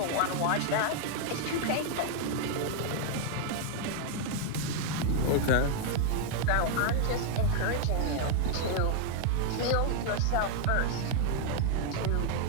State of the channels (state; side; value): different; both; correlation 0.00